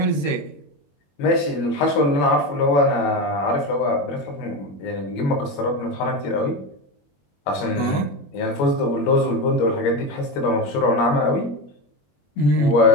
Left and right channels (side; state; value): right; late; 21 ms